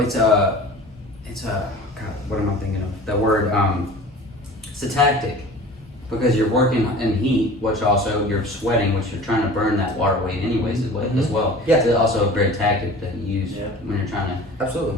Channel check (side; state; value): both; normal; correlation 0.41